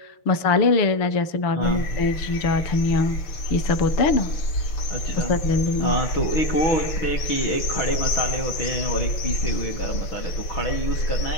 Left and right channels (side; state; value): right; late; 6.3 ms